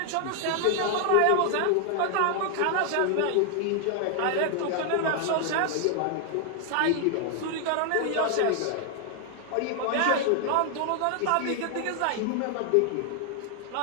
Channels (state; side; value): different; both; correlation 0.00